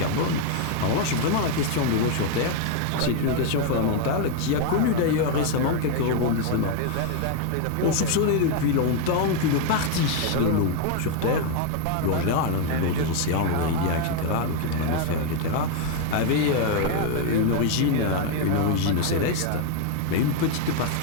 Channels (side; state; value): both; different; correlation 0.01